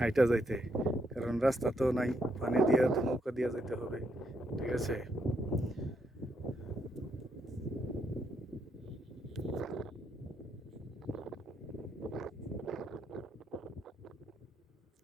যাইতে, কারণ রাস্তা তো নাই, পানি দিয়ে তো নৌকা দিয়ে যাইতে হবে। ঠিক আছে,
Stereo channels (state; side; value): normal; both; correlation 0.77